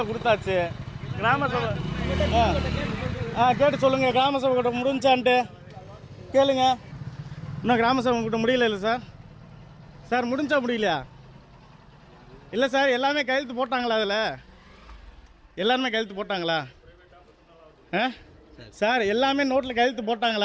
கொடுத்தாச்சு. கிராம சபை கேட்டு சொல்லுங்க. கிராம சபை கூட்டம் முடிஞ்சான்ட்டு கேளுங்க. இன்னும் கிராம சபை கூட்டம் முடியல இல்லை சார்? சார் முடிஞ்சா முடியலையா? இல்லை சார், எல்லாமே கையெழுத்து போட்டாங்களா? அதில் எல்லாருமே கையெழுத்து போட்டாங்களா? சார் எல்லாமே நோட்டில் கையெழுத்து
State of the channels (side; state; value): both; identical; correlation 1.00